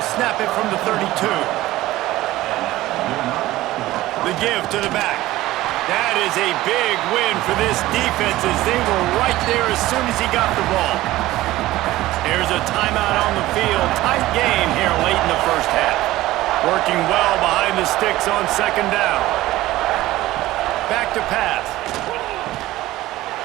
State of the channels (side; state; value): left; quieter; 16.7 dB